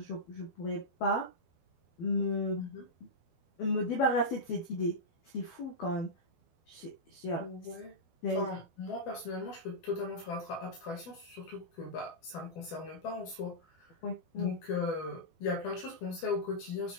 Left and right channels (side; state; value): right; late; 12 ms